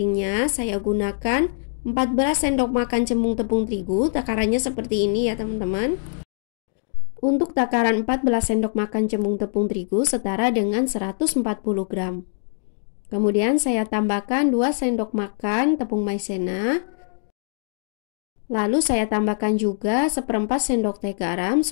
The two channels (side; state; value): right; silent; digital silence